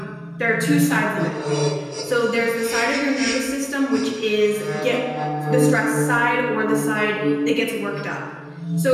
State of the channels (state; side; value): identical; both; correlation 1.00